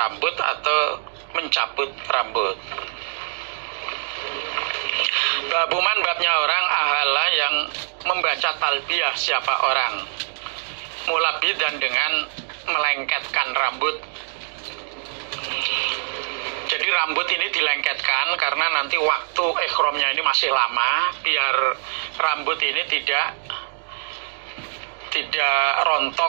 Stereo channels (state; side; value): silent; left; digital silence